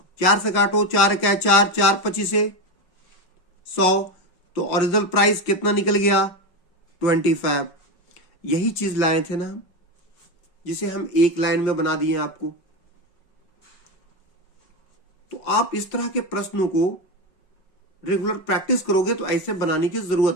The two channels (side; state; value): right; late; 5.4 ms